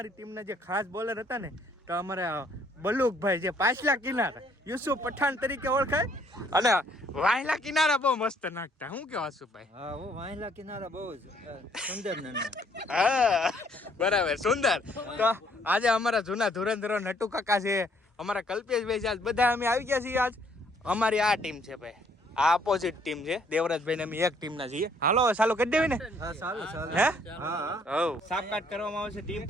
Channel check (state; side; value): normal; both; correlation 0.65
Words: ટીમના જે ખાસ બોલર હતા ને તો અમારા બલુકભાઈ જે પાછલા કિનારા યુસુફ પઠાણ તરીકે ઓળખાય અને વાયલા કિનારા બહુ મસ્ત નાખતા શું કેવા સુભાઈ હા હું વાયલા કિનારા બહુ સુંદર હા બરાબર સુંદર તો આજે અમારા જૂના ધુરંધરો નટુ કાકા છે અમારા કલ્પેશભાઈ છે આજ બધા અમે આવી ગયા છીએ આજ અમારી આ ટીમ છે ભાઈ આ અપોઝિટ ટીમ છે દેવરાજભાઈ ને અમે એક ટીમ ના છીએ હાલો ચાલુ કરી દેવી ને હા ચાલો હે હા સાપકાટ કરવામાં આવશે ટીમ